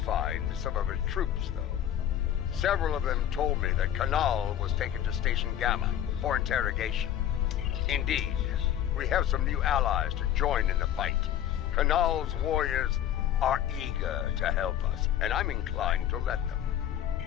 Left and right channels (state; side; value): quieter; right; 10.9 dB